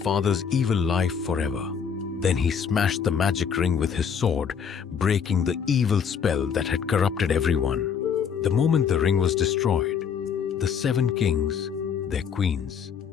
evil life forever. Then he smashed the magic ring with his sword, breaking the evil spell that had corrupted everyone. The moment the ring was destroyed, the 7 kings, their queens,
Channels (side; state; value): right; quieter; 7.2 dB